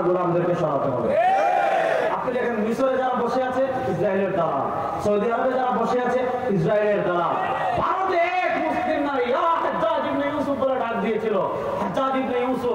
গোলামদেরকে সরাতে হবে। আপনি দেখেন মিশরে যারা বসে আছে ইসরায়েলের দালাল, সৌদি আরবে যারা বসে আছে ইসরায়েলের দালাল, ভারতে এক মুসলিম নারী হাজ্জাজ ইবনে ইউসুফ বলে ডাক দিয়েছিল। হাজ্জাজ ইবনে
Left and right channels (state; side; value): identical; both; correlation 1.00